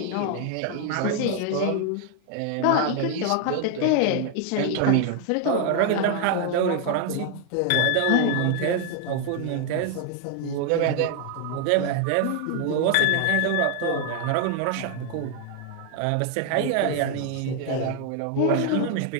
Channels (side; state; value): both; different; correlation 0.00